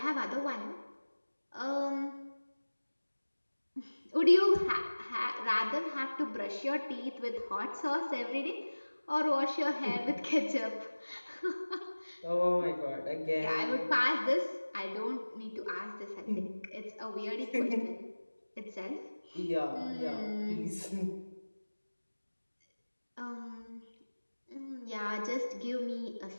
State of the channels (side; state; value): both; inverted; correlation -1.00